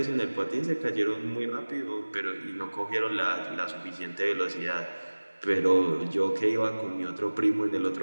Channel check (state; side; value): inverted; both; correlation -1.00